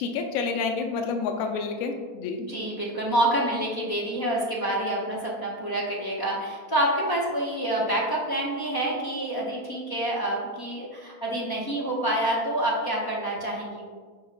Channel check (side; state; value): right; late; 4.1 ms